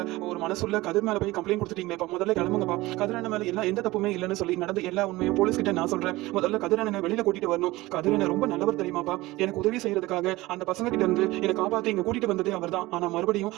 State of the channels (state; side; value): quieter; left; 19.4 dB